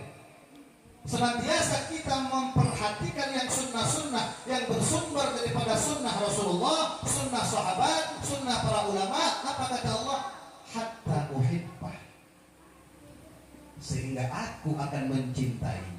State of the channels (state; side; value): identical; both; correlation 1.00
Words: senantiasa kita memperhatikan yang sunnah-sunnah yang bersumber daripada sunnah Rasulullah, sunnah sahabat, sunnah para ulama. Apa kata Allah? Hatta uhibbah, sehingga aku akan